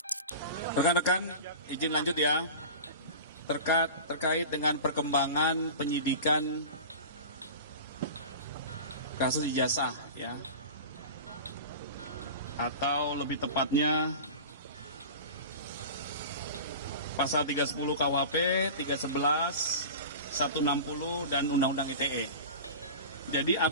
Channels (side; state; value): both; inverted; correlation -0.33